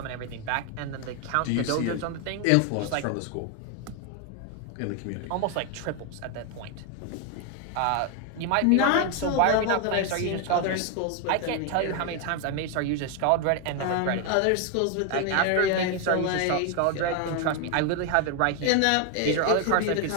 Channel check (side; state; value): both; different; correlation 0.01